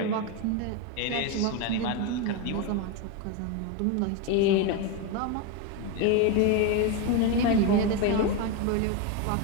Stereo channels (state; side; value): different; both; correlation 0.03